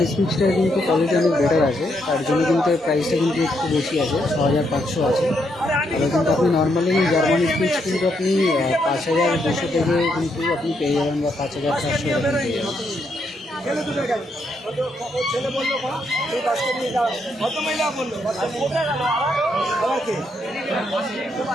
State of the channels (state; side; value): normal; both; correlation 0.77